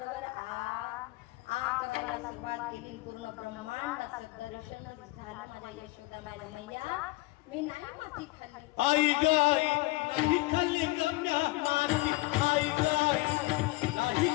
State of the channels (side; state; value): right; quieter; 21.8 dB